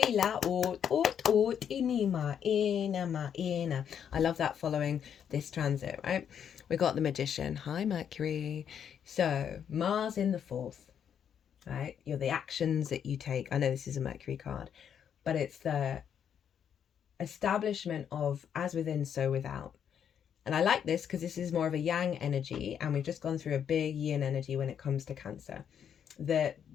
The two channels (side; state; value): right; quieter; 8.4 dB